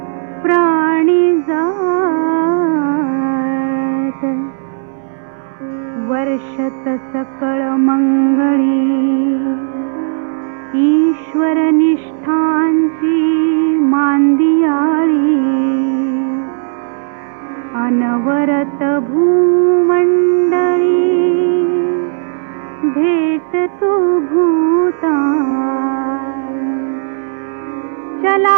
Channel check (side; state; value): left; silent; digital silence